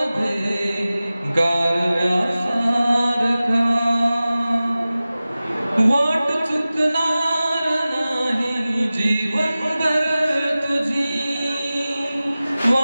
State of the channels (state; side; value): inverted; both; correlation -0.96